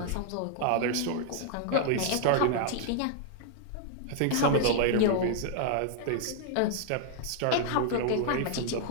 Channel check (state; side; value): different; both; correlation -0.01